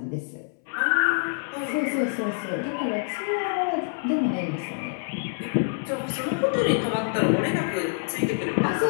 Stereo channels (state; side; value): silent; right; 61 dB below the other